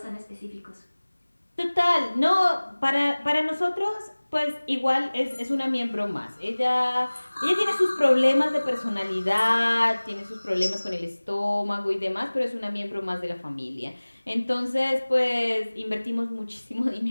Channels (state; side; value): inverted; both; correlation -1.00